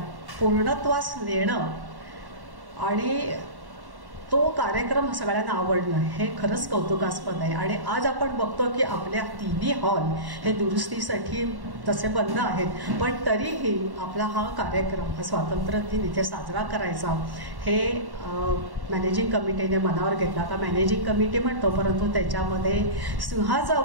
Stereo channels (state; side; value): late; left; 1.1 ms